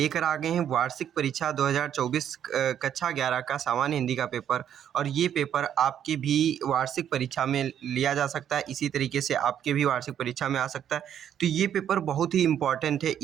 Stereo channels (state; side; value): quieter; left; 9.7 dB